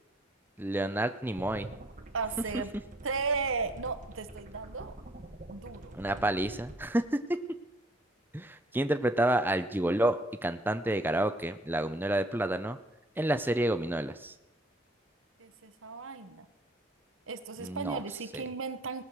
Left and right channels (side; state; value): both; normal; correlation 0.60